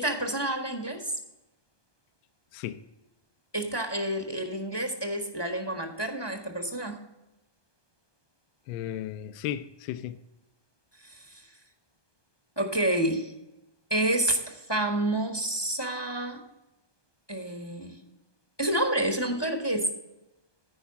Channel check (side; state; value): right; late; 1.2 ms